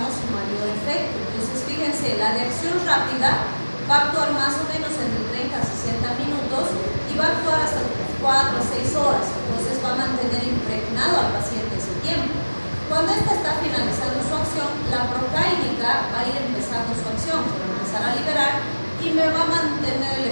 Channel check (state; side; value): inverted; both; correlation -1.00